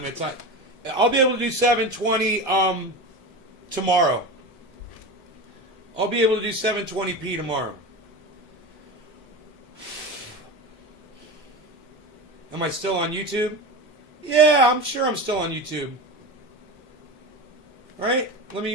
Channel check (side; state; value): both; normal; correlation 0.25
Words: I'll be able to do 720 tomorrow. I'll be able to do 720p tomorrow. Am I still on YouTube? Yeah, I'm sure I'm still on YouTube. All right, let